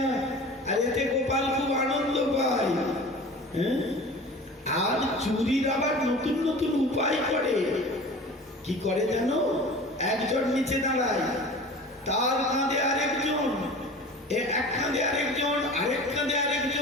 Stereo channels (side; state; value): both; normal; correlation 0.39